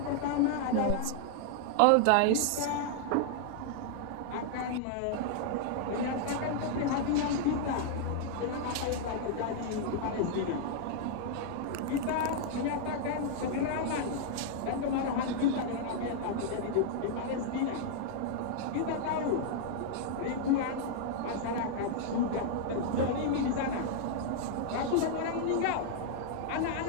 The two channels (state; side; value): different; both; correlation -0.01